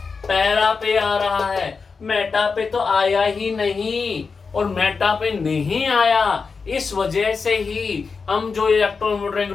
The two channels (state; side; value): quieter; right; 4.9 dB